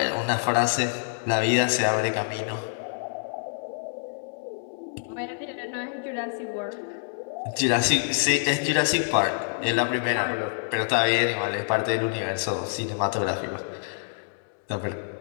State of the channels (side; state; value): right; silent; digital silence